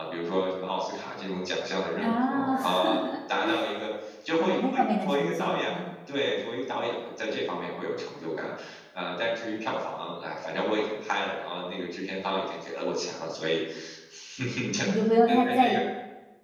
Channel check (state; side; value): identical; both; correlation 1.00